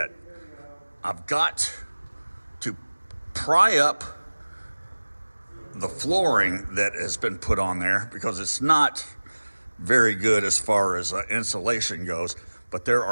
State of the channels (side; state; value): both; inverted; correlation -1.00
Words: I've got to pry up the flooring that has been put on there because it's not very good as far as insulation goes, but there